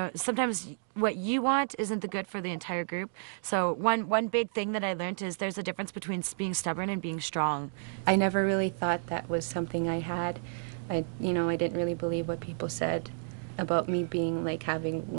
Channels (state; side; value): silent; left; digital silence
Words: what you want isn't the good for the entire group. So one big thing that I learned is there's a difference between being stubborn and being strong. I never really thought that was something I had. I didn't really believe what people said about me being having